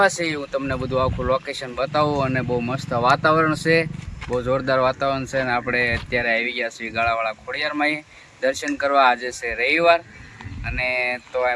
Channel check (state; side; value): identical; both; correlation 1.00